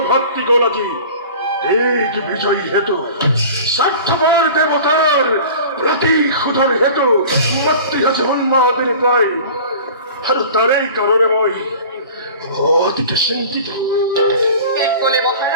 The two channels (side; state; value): both; inverted; correlation -0.41